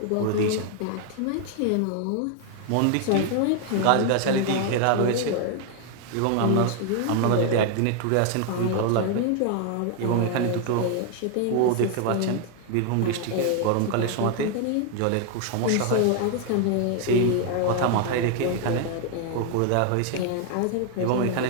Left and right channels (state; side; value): different; both; correlation 0.00